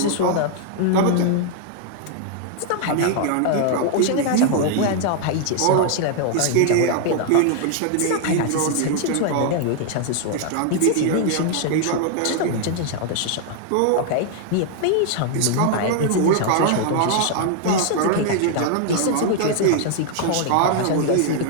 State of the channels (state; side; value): different; both; correlation 0.00